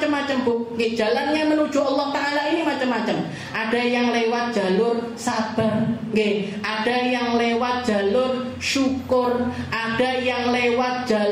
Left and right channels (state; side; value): identical; both; correlation 1.00